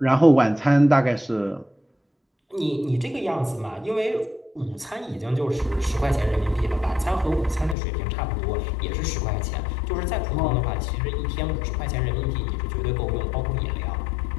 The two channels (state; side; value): drops out; right; at 7.8 s